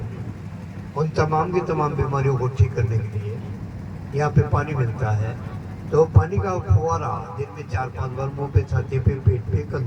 उन तमाम की तमाम बीमारियों को ठीक करने के लिए यहाँ पे पानी मिलता है। तो पानी का फुवारा दिन में 4-5 बार मुंह पे, छाती पे, पेट पे,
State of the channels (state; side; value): identical; both; correlation 1.00